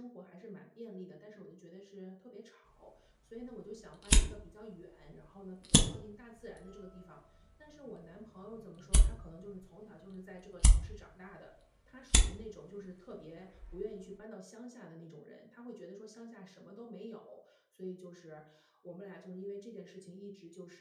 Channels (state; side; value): identical; both; correlation 1.00